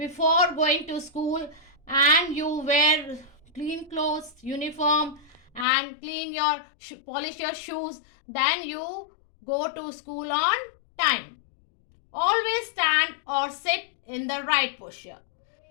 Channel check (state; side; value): drops out; right; at 5.7 s